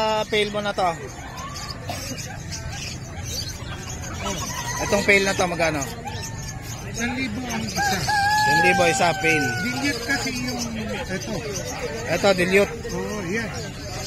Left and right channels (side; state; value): both; identical; correlation 1.00